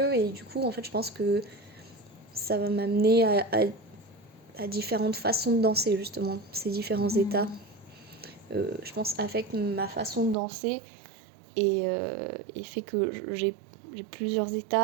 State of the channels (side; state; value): left; drops out; at 10.4 s